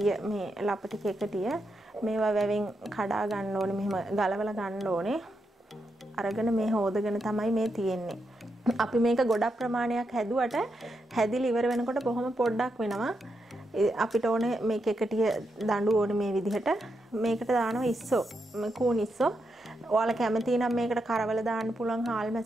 මේ ලපටි කෙකටිය. මේවා වැවෙන් කඩා ගන්න ඕනේ මෙහෙම ගලවලා ගන්න ඕනේ. අරගෙන මේ හොදගෙන තමයි මේ තියෙන්නේ. අපි මේක ගොඩක් ප්‍රමාණයක් හැදුවට හැදිලි ඉවර වෙනකොට බොහොම පොඩ්ඩක් වෙනවා. අපිට ඕනේ මේ කෙකටිය දඬු ඕනේ මේ විදිහට. මේකට දානවා ඉස්සෝ. කූන් ඉස්සෝ. ඔයාලා කැමති නම් මේකට කරවල දාන්න පුළුවන්,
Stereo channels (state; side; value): normal; both; correlation 0.83